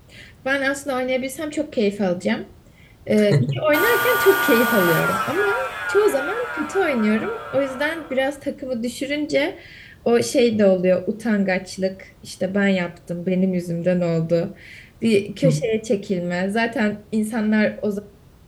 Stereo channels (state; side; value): identical; both; correlation 1.00